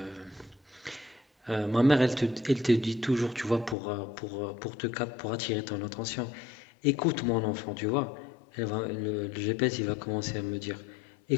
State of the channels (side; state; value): right; drops out; at 3.8 s